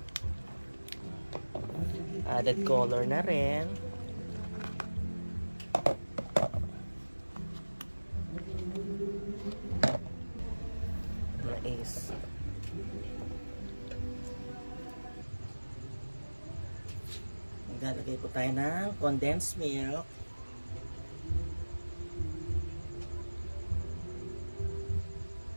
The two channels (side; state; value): both; inverted; correlation -1.00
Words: Added color na rin. Mais. Maglalagay po tayo ng condensed milk.